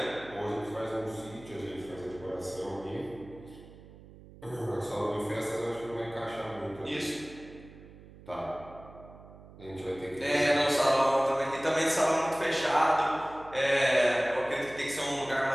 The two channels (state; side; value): noise; right; hum, 19 dB below the sound